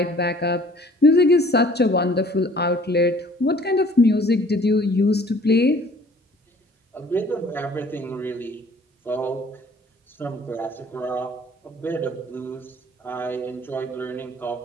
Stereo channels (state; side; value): normal; both; correlation 0.54